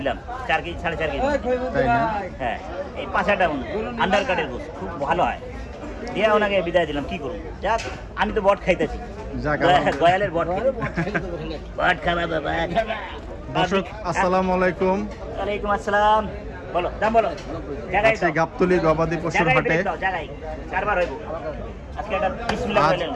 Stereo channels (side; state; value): both; identical; correlation 1.00